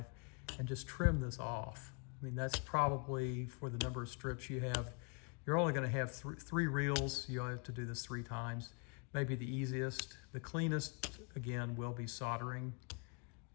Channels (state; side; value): quieter; right; 35.3 dB